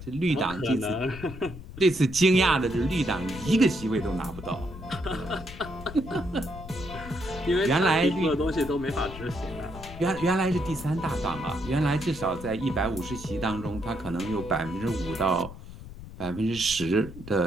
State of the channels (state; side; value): noise; left; rumble, 13 dB below the sound